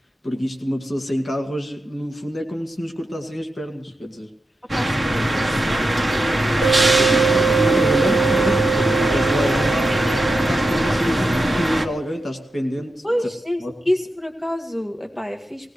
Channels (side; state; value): both; normal; correlation 0.89